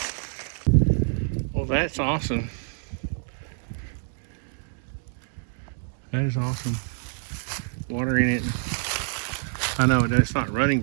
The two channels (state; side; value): silent; left; digital silence